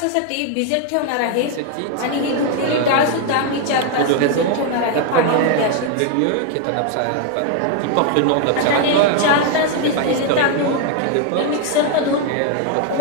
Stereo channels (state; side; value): different; both; correlation 0.00